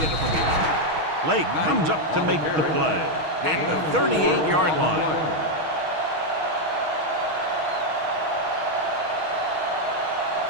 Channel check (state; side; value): late; left; 6.3 ms